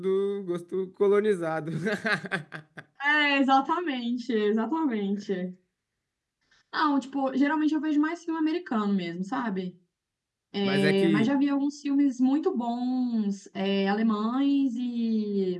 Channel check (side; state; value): both; identical; correlation 1.00